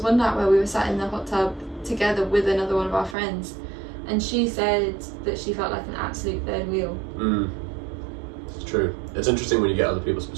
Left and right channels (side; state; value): left; drops out; at 3.2 s